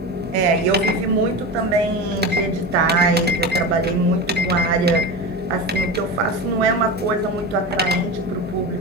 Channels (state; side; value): normal; both; correlation 0.25